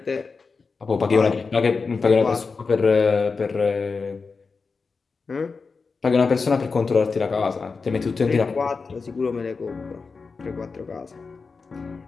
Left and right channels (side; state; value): right; quieter; 4.6 dB